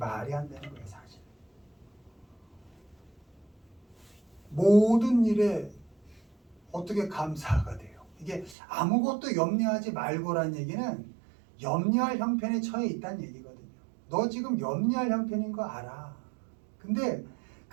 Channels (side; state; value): left; drops out; at 8.6 s